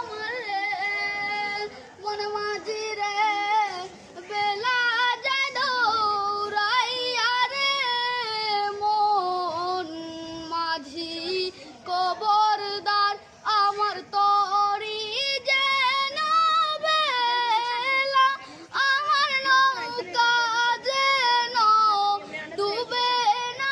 রে মন মাঝি রে বেলা যায় দৌড়াইয়া রে। মন মাঝি কবরদার আমার তরি যেন বেলা, আমার নৌকা যেন ডুবে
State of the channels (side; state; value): both; identical; correlation 1.00